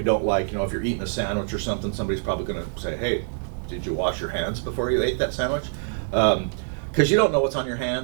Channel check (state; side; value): silent; left; digital silence